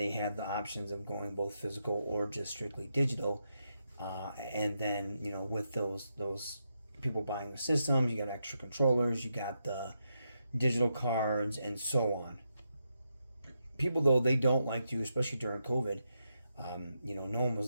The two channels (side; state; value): both; inverted; correlation -0.83